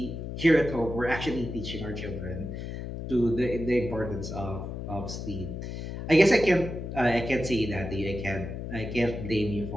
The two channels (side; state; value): left; noise; hum, 7 dB below the sound